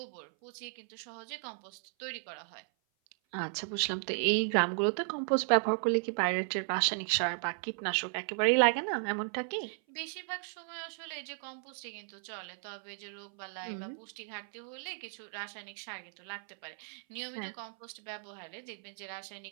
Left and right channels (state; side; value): silent; left; 54 dB below the other